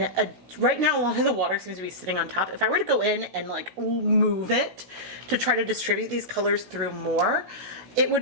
right now a lot of the water seems to be sitting on top. If I were to go in and like move it to try to distribute these colors through more, it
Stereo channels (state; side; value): late; left; 16 ms